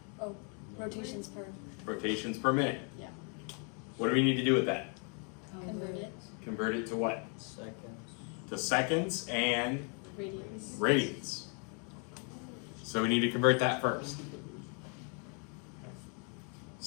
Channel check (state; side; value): quieter; right; 38.3 dB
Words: Oh, rotations per. Rotations per minute. Yeah. What do we need to do with that? Convert it. Convert it to what? Seconds. To seconds and Radians. radians. So we need to convert that first.